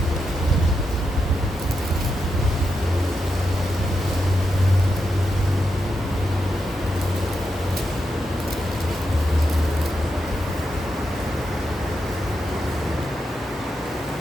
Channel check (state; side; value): normal; both; correlation 0.85